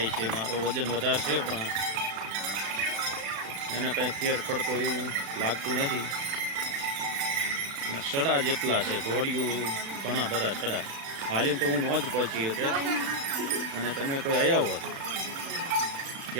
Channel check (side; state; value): left; late; 36 ms